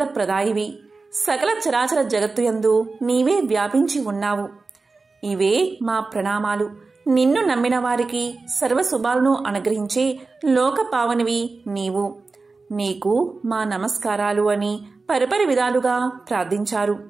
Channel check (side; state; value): left; quieter; 3.9 dB